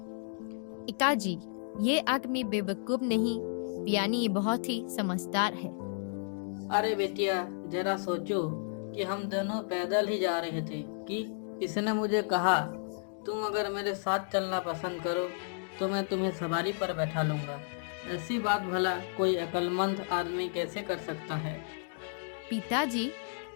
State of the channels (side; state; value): right; silent; digital silence